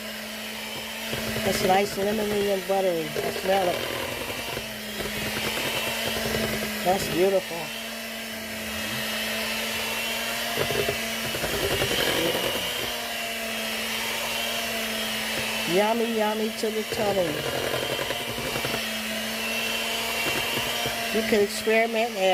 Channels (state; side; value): identical; both; correlation 1.00